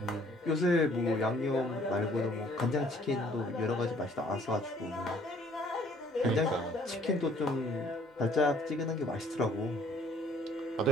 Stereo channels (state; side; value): normal; both; correlation 0.59